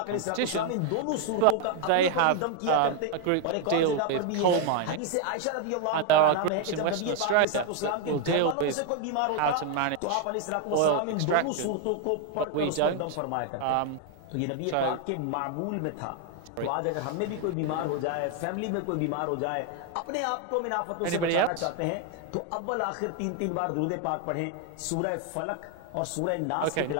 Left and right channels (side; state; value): both; different; correlation 0.01